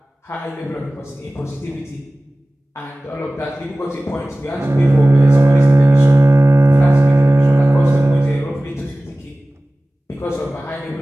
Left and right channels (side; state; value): both; normal; correlation 0.98